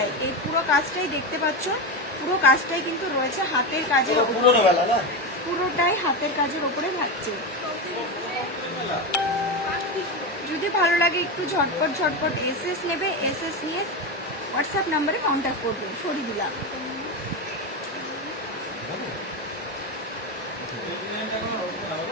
এই পুরো কাজটাই দেখতে পাচ্ছ, পুরো কাজটাই কিন্তু রয়েছে হাতের কাজের ওপরে, পুরোটাই হাতের কাজের ওপরে থাকছে। যদি ভালো লাগে একটু ঝটপট এসএস নেবে, এসএস নিয়ে হোয়াটসঅ্যাপ নাম্বারে কন্ট্যাক্ট করবে। সরিয়ে দিলাম।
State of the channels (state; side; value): normal; both; correlation 0.15